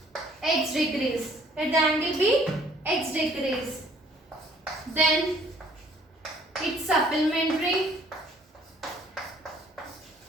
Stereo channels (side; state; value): both; normal; correlation 0.59